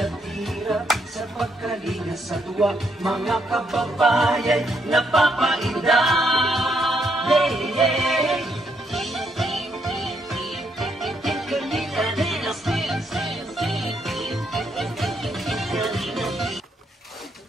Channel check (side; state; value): both; normal; correlation 0.75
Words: hirap sa pagkalinga sa tuwa. Mga kababayan napapainda. Hey, hey.